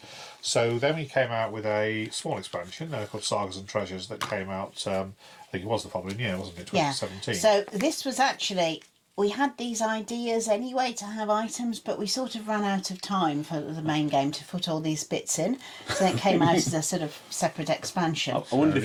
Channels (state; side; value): identical; both; correlation 1.00